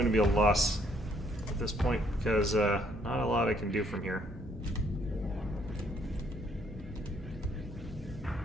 to be a loss at this point, because not a lot I can do from here.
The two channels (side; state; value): both; normal; correlation 0.67